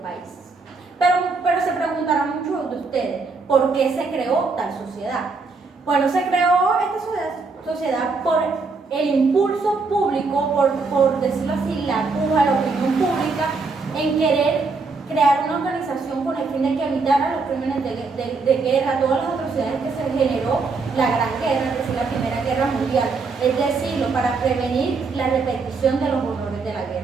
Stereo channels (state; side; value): quieter; left; 4.2 dB